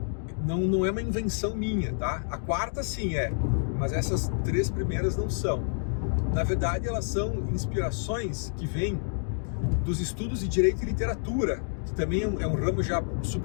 não é uma invenção minha, tá? A 4ª sim é, mas essas 3 primeiras não são. Na verdade, elas são inspirações que vêm dos estudos de direito e literatura, que também é um ramo já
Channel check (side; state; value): right; silent; digital silence